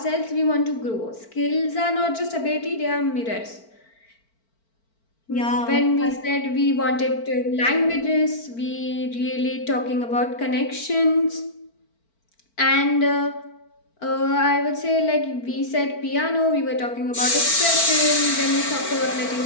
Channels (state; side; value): late; right; 4.4 ms